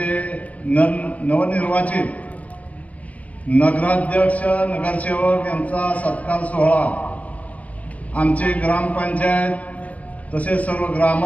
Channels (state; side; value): late; right; 0.068 ms